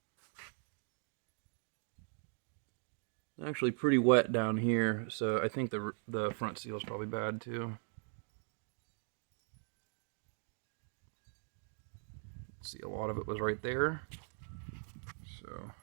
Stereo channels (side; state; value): left; silent; 51 dB below the other